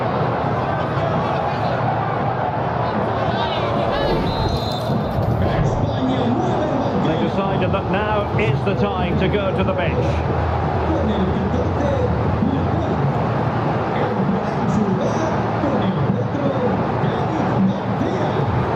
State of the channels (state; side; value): identical; both; correlation 1.00